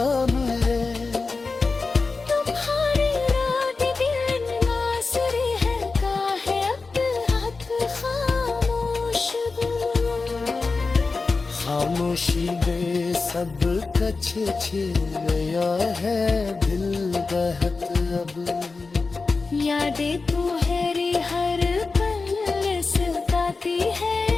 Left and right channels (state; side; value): quieter; right; 4.1 dB